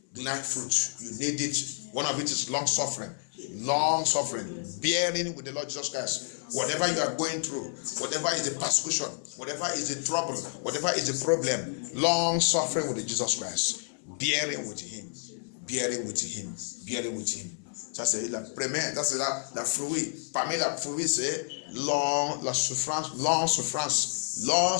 The 9th fruit. You need it. One of it is long suffering. Long suffering. Bearing with the Lord Jesus Christ. Whatever you are going through, whatever is the persecution, whatever is the trouble, whatever is the problem, long suffering with Jesus Christ, bearing with him, bearing with him, bearing with him. Ça c'est la première, ça c'est la fruit. Parmi la fruit c'est la souffrance, long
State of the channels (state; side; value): silent; right; 58 dB below the other